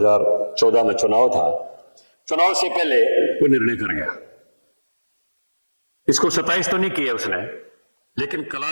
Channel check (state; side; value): inverted; both; correlation -1.00